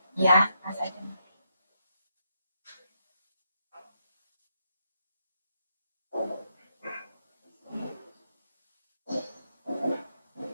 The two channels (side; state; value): both; inverted; correlation -0.80